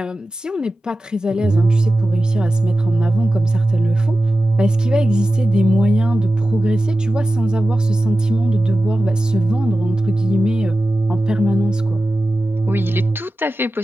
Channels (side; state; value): both; normal; correlation 0.94